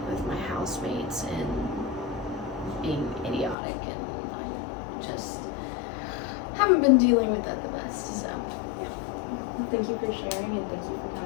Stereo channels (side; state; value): right; drops out; at 3.6 s